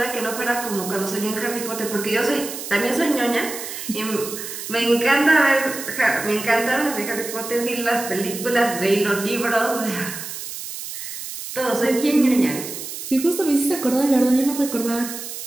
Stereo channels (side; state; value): right; noise; hiss, 9 dB below the sound